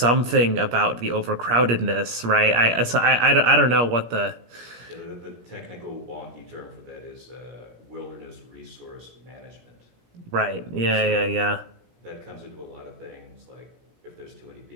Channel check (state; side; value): late; left; 17 ms